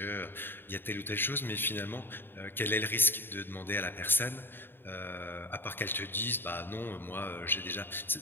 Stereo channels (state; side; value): late; right; 0.099 ms